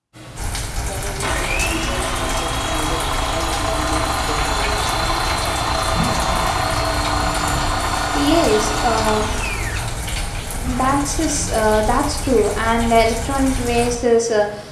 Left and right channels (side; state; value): both; identical; correlation 1.00